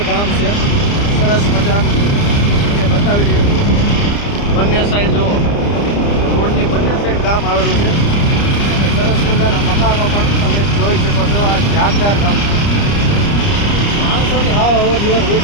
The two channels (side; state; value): right; late; 30 ms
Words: ગામ છે સરસ મજાનું એ બતાવી રહ્યું છું. બંને સાઈડ જુઓ, રોડની બંને સાઈડ ગામ આવેલું છે. સરસ મજાના મકાનો પણ તમે જોઈ શકો છો. આ જાગધાર ગામ માણસોની હાવ અવર જવર